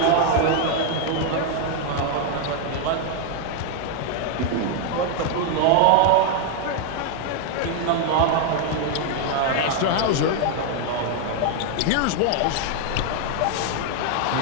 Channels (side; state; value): both; different; correlation 0.00